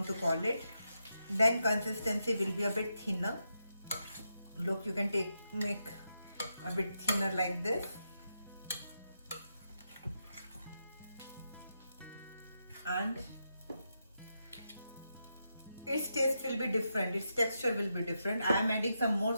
to call it. Then consistency will be a bit thinner. Look, you can make a bit thinner like this. And its taste will be different, its texture will be different. I am adding some more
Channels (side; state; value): both; inverted; correlation -0.85